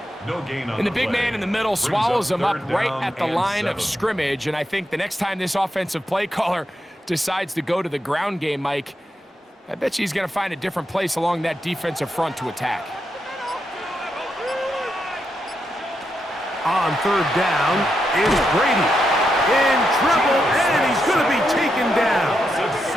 No gain on And the big man in the middle swallows him up right at the line 7. of scrimmage. And I think the next time this offensive play caller decides to go to the ground game, Mike, I bet you he's going to find a different place along that defensive front to attack. On third down is Brady. In trouble, and he's going to be taken down.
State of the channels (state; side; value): normal; both; correlation 0.84